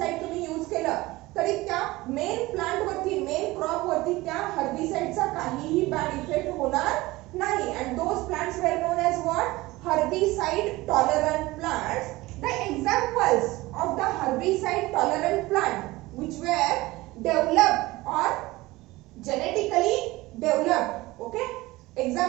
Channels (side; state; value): left; quieter; 19.9 dB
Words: तुम्ही use केलं तरी त्या main plant वरती, main crop वरती त्या हर्बिसाइडचा काहीही bad effect होणार नाही. And those plants were known as what? Herbicide tolerant plants. The examples of the herbicide tolerant plant which were developed or genetically developed, okay,